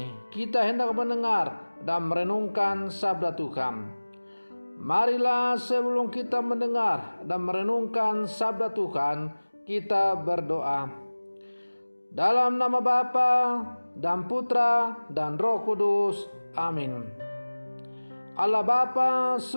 kita hendak mendengar dan merenungkan sabda Tuhan. Marilah sebelum kita mendengar dan merenungkan sabda Tuhan, kita berdoa. Dalam nama Bapa dan Putra dan Roh Kudus. Amin. Allah Bapa,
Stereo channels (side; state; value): both; inverted; correlation -1.00